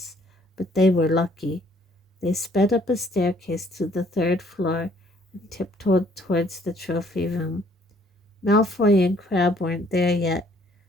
but they were lucky. They sped up a staircase to the third floor and tiptoed towards the trophy room. Malfoy and Crabbe weren't there yet.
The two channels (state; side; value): normal; both; correlation 0.63